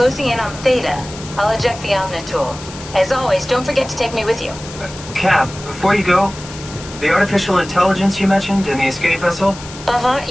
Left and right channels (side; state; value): left; noise; hiss, 15 dB below the sound